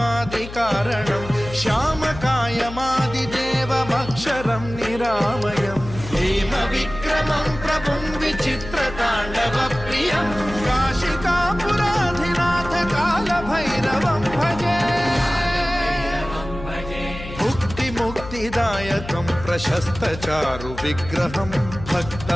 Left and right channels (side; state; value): left; noise; hum, 12 dB below the sound